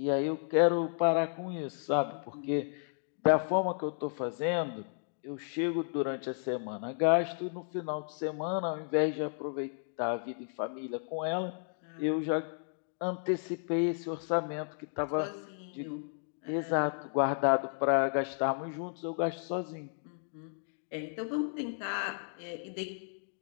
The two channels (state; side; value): silent; right; digital silence